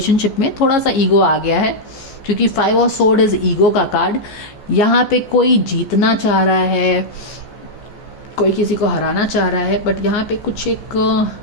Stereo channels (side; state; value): right; late; 14 ms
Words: में थोड़ा सा ईगो आ गया है, क्योंकि 5 ऑफ सोर्ड इज ईगो का कार्ड। यहाँ पे कोई जीतना चाह रहा है, कोई किसी को हराना चाह रहा है, बट यहाँ पे कुछ एक